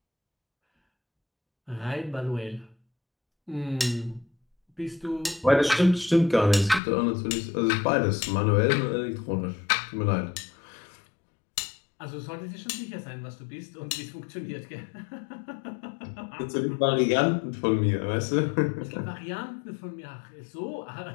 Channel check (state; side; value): drops out; right; at 6.8 s